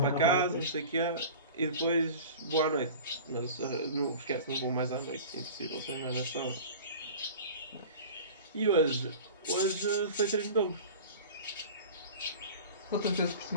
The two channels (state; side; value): inverted; both; correlation -0.37